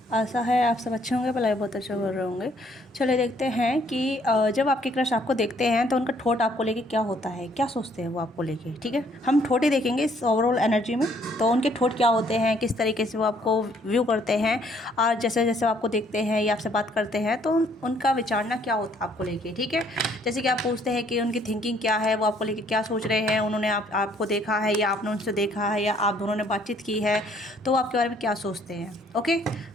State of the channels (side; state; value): both; normal; correlation 0.64